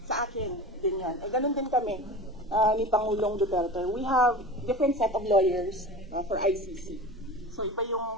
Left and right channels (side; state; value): both; normal; correlation 0.34